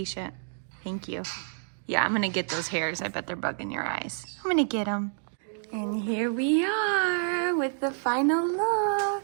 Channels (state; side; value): silent; left; digital silence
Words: Thank you. Yeah, I'm gonna get those hairs. I bet they're bugging your eyes. I'm gonna get them. And here we are with the final